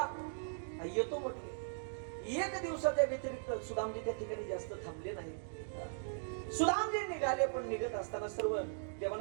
येतो म्हटले. एक दिवसाच्या व्यतिरिक्त सुदामजी त्या ठिकाणी जास्त थांबले नाही. सुदामजी निघाले, पण निघत असताना सर्व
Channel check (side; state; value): left; silent; digital silence